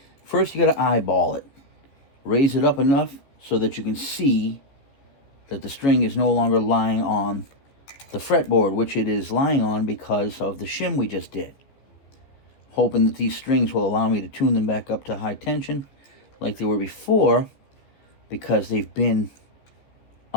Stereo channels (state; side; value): late; right; 14 ms